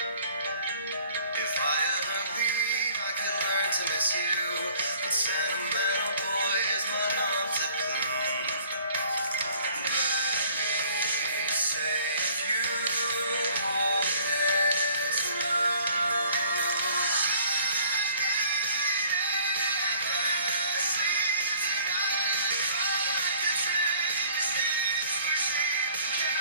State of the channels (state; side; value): inverted; both; correlation -0.56